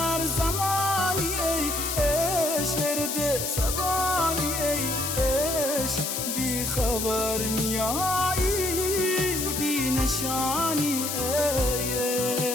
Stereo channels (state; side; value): noise; left; hiss, 2 dB below the sound